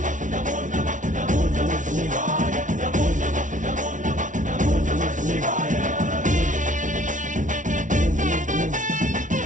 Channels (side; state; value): left; late; 0.37 ms